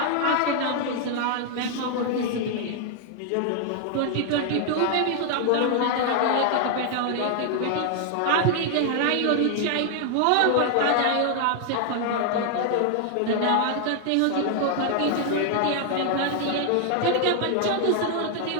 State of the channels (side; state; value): both; different; correlation 0.00